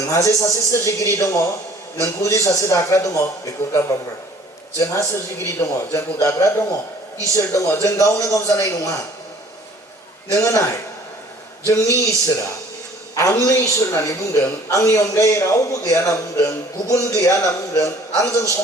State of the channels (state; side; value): normal; both; correlation 0.53